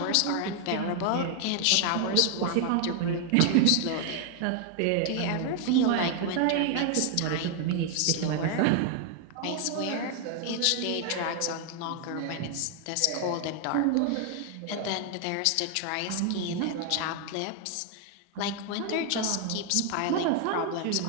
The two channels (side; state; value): both; different; correlation 0.00